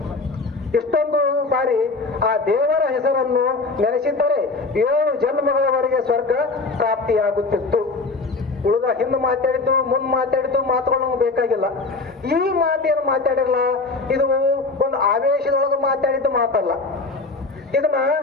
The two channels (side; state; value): right; quieter; 3.6 dB